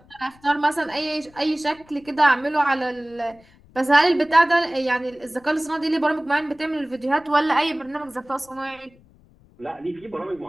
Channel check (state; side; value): noise; left; rumble, 28 dB below the sound